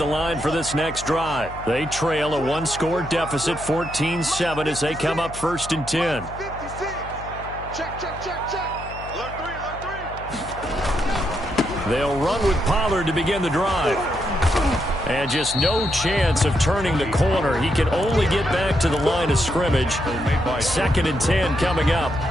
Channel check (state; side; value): noise; left; hum, 13 dB below the sound